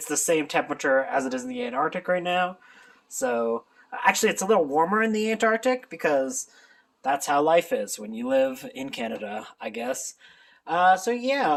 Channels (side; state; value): both; identical; correlation 1.00